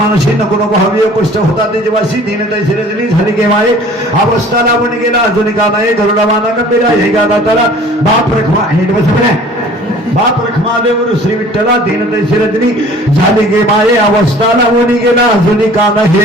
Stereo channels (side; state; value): both; normal; correlation 0.49